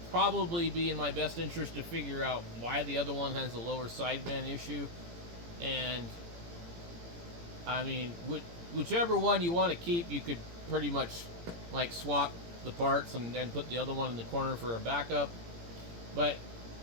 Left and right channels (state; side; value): late; left; 18 ms